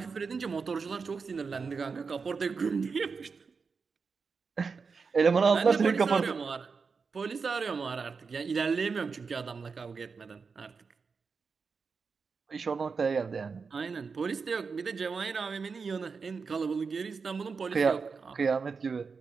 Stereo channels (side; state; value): left; quieter; 5.1 dB